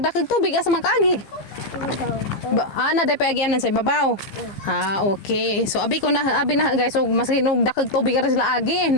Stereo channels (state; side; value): late; right; 15 ms